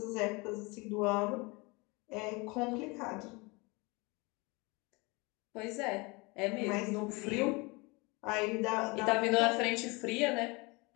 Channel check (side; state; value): right; quieter; 26.6 dB